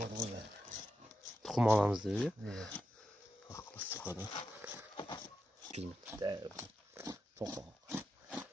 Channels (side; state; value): both; normal; correlation 0.88